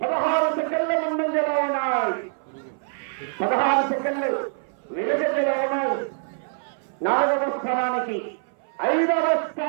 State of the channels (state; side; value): silent; left; 57 dB below the other